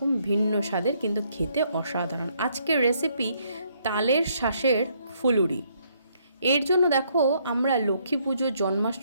ভিন্ন স্বাদের, কিন্তু খেতে অসাধারণ। আজকের রেসিপি তালের শাঁসের ফুলুরি। এর জন্য দেখো, আমরা লক্ষ্মী পুজো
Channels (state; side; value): inverted; both; correlation -0.70